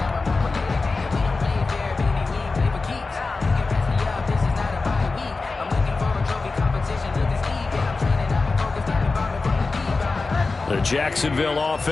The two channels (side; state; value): right; quieter; 3.9 dB